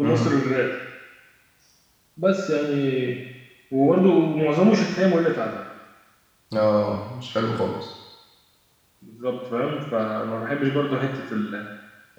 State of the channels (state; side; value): identical; both; correlation 1.00